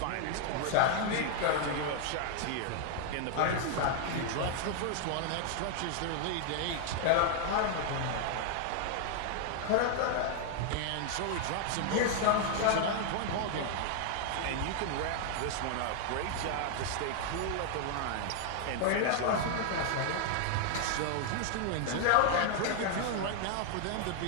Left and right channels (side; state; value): both; different; correlation 0.00